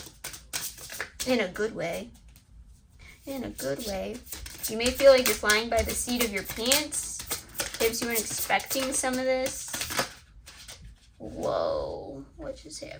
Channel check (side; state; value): both; identical; correlation 1.00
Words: In a good way. In a good way. You may feel like you're flying by the seat of your pants. Perhaps you weren't expecting some of this. Whoa. What just